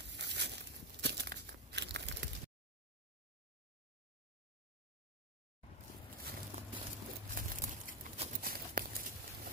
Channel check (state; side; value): normal; both; correlation 0.05